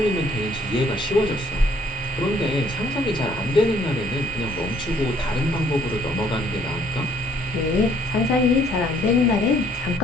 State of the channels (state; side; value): normal; both; correlation 0.63